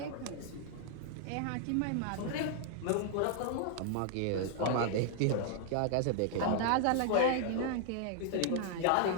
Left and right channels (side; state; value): both; different; correlation 0.00